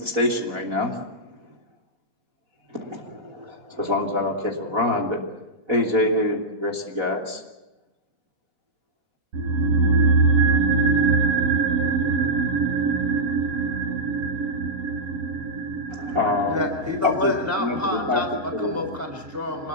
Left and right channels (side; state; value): left; late; 4.1 ms